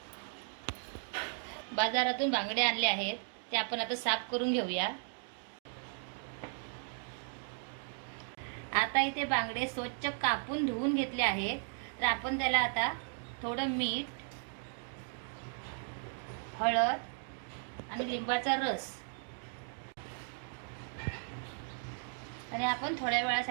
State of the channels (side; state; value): left; silent; 54 dB below the other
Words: बाजारातून बांगडे आणले आहेत, ते आपण आता साफ करून घेऊया। आता इथे बांगडे स्वच्छ कापून धुवून घेतले आहेत, तर आपण त्याला आता थोडं मीठ, हळद आणि लिंबाचा रस आणि आपण थोड्या